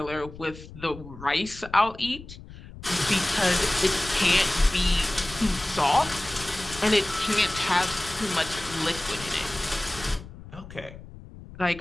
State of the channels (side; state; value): left; noise; rumble, 16 dB below the sound